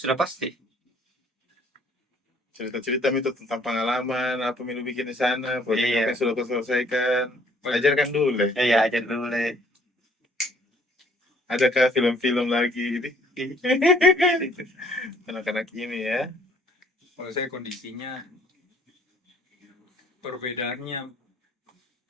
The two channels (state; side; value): normal; both; correlation 0.60